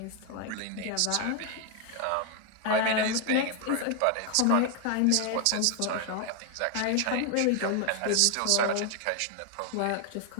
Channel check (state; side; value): different; both; correlation 0.01